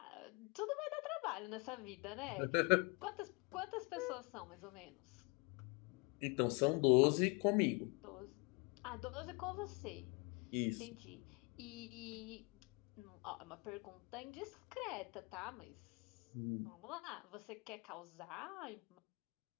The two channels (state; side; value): quieter; right; 29.3 dB